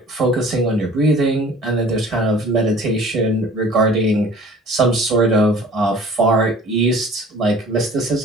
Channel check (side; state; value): both; normal; correlation 0.48